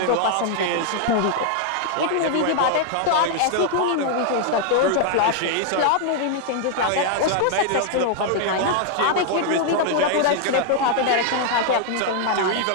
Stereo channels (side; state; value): both; different; correlation 0.00